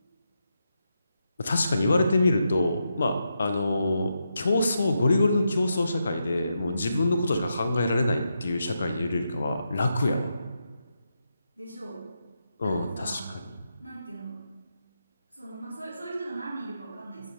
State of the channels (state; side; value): inverted; both; correlation -0.85